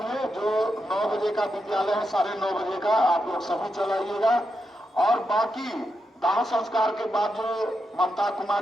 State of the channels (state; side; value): normal; both; correlation 0.85